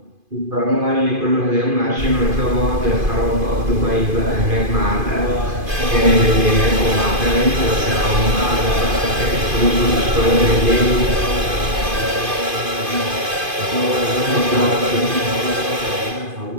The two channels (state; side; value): late; left; 2.5 ms